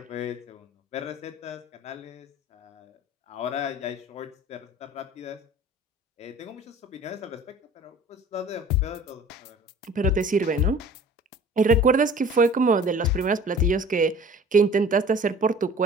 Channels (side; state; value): both; normal; correlation 0.46